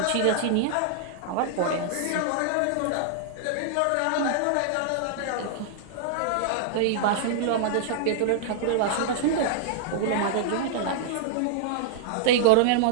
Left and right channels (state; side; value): different; both; correlation -0.01